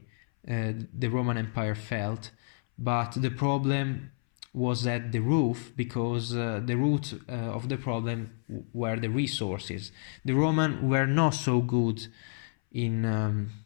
the Roman Empire failed, but the problem was at the root, because the root of the problem were the resources. The Romans were not so good in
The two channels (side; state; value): right; silent; 58 dB below the other